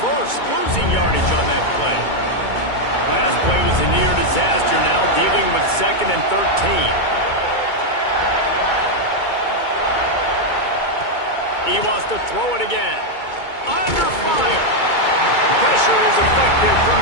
losing yardage on that play. Last play was a near disaster, now dealing with 2nd and 13. He wants to throw it again. Under fire. Pressure is effective from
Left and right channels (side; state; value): right; late; 2.2 ms